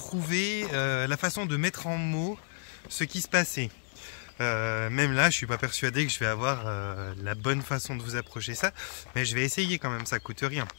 la façon de mettre en mots ce qui se passait. Même là, je suis pas persuadé que je vais avoir la bonne façon de vous approcher ça, mais je vais essayer quand même, ça coûte rien.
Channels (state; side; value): silent; right; 57 dB below the other